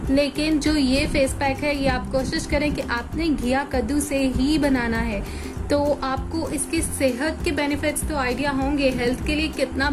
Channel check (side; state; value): both; identical; correlation 1.00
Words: लेकिन जो ये फेस पैक है ये आप कोशिश करें कि आपने घिया कद्दू से ही बनाना है, तो आपको इसकी सेहत के बेनिफिट्स तो आइडिया होंगे, हेल्थ के लिए कितना